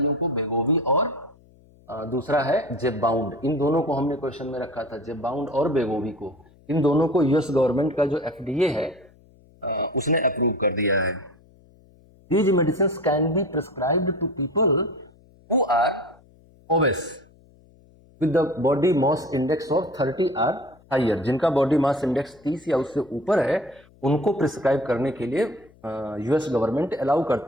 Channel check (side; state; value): left; noise; hum, 28 dB below the sound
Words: को, वेगोवी और दूसरा है जेबबाउंड। इन दोनों को हमने क्वेश्चन में रखा था, जेबबाउंड और वेगोवी को, इन दोनों को यूएस गवर्नमेंट का जो एफडीए है उसने अप्रूव कर दिया है। These medicines can be prescribed to people who are obese with the body mass index of 30 or higher। जिनका बॉडी मास इंडेक्स 30 या उससे ऊपर है उनको प्रिस्क्राइब करने के लिए यूएस गवर्नमेंट अलाउ